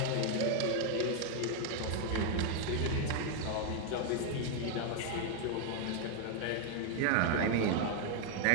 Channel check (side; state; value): both; different; correlation 0.01